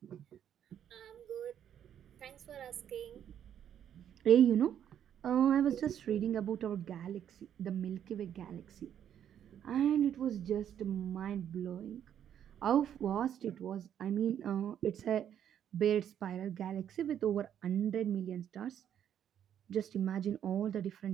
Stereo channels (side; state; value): left; quieter; 9.6 dB